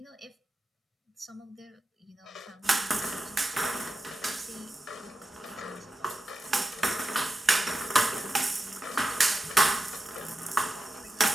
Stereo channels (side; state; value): both; normal; correlation 0.89